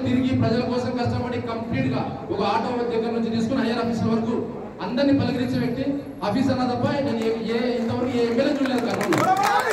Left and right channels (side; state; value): both; identical; correlation 1.00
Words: తిరిగి ప్రజల కోసం కష్టపడి కంప్లీట్ గా ఒక ఆటో దగ్గర నుంచి తీసుకుని హైయర్ ఆఫీసర్ వరకు అందరినీ పలకరించే వ్యక్తి ఆఫీసర్ అన్న తప్ప నేను ఇంతవరకు ఏ ఎమ్మెల్యే చూడలేదు కర్నూలు.